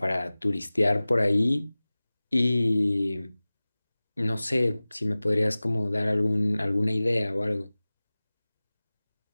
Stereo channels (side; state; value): both; inverted; correlation -0.98